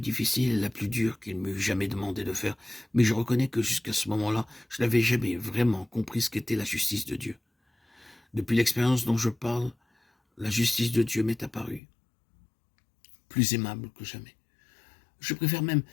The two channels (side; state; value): right; drops out; at 11.8 s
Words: difficile et la plus dure qu'il m'eût jamais demandé de faire, mais je reconnais que jusqu'à ce moment-là, je n'avais jamais vraiment compris ce qu'était la justice de Dieu. Depuis l'expérience dont je parle, la justice de Dieu m'est apparue, plus aimable que jamais. Je préfère même